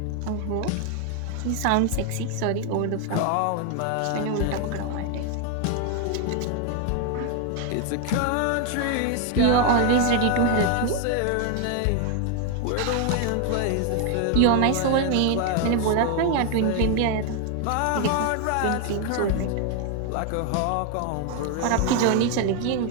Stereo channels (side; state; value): both; different; correlation 0.01